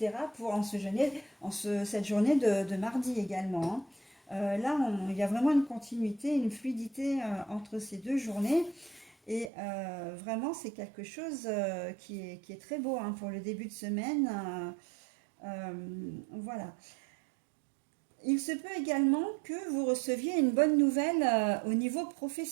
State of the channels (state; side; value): drops out; left; at 9.5 s